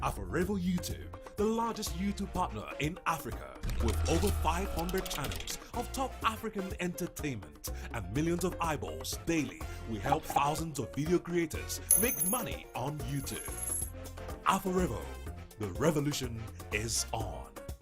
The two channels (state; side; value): identical; both; correlation 1.00